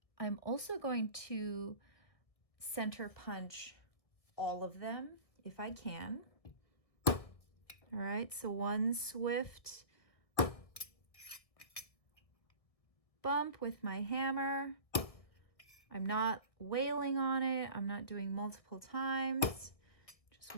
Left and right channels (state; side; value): late; right; 1.6 ms